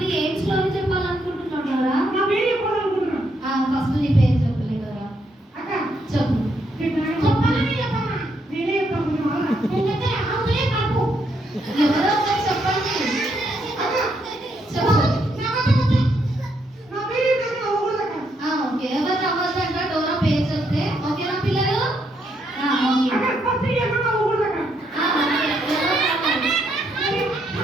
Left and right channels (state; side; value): normal; both; correlation 0.76